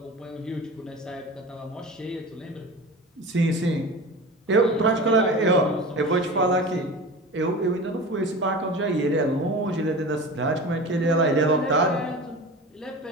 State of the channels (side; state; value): both; normal; correlation 0.33